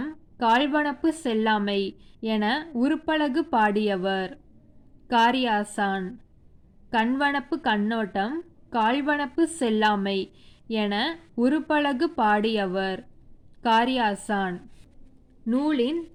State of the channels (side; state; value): both; identical; correlation 1.00